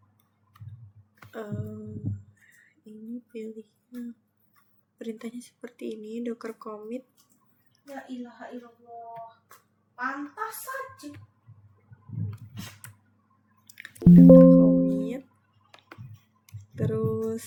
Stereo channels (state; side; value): identical; both; correlation 1.00